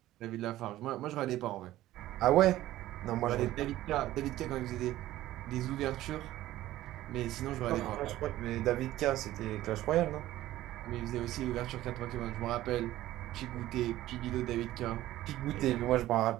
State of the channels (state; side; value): quieter; left; 15.0 dB